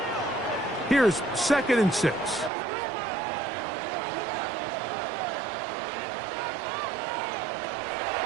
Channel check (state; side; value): drops out; left; at 2.5 s